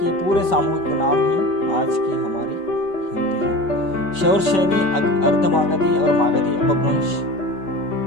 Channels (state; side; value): late; right; 5.2 ms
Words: पूरे सामूहिक नाम ही आज की हमारी हिंदी है। शौरसेनी, अर्धमागधी और मागधी अपभ्रंश